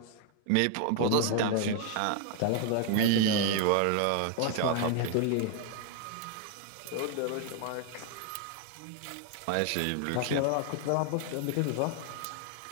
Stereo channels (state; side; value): different; both; correlation 0.00